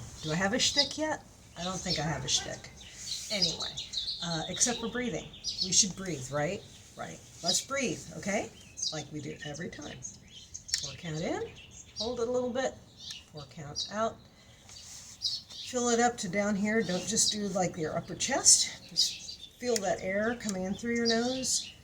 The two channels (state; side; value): identical; both; correlation 1.00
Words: Do I have a shtick yet? I don't think I have a shtick. Anyway, except for breathing. We should breathe, right? Right. Let's breathe, okay? Like we do every time. 4 count in, hold it a little bit, 4 counts out. Fill it up to down here. Don't just do like your upper chest. Just feel that air coming in through your nose.